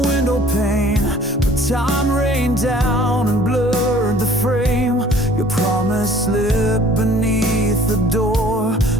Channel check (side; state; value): both; normal; correlation 0.53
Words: pane, but time rained down and blurred the frame. Your promise slipped beneath the door,